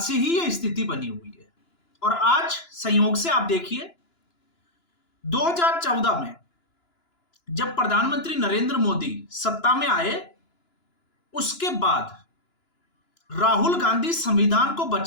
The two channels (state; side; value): late; right; 2.9 ms